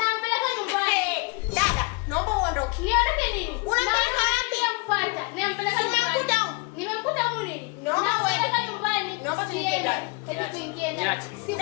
nyumbani. Dada, naomba uondoke. Niondoke nini? Unampeleka wapi? Nampata. Nampeleka nyumbani. Nimemkuta huko nini? Nampeleka nyumbani. Naomba tuingie ndani. Hebu tuingie ndani.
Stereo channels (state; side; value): quieter; right; 30.4 dB